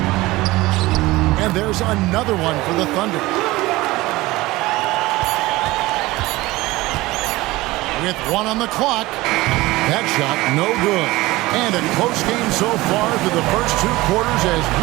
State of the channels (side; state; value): left; quieter; 19.6 dB